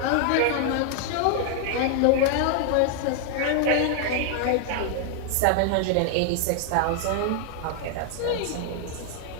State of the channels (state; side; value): different; both; correlation 0.00